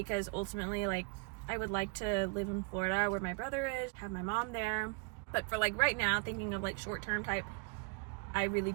ultimately, like, I would like to live in Florida where my brother is, have my mom there. But for like right now, thinking of like short-term type, I really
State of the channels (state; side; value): quieter; left; 33.0 dB